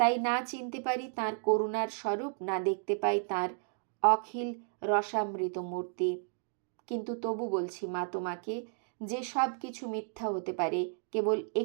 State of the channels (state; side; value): silent; left; 56 dB below the other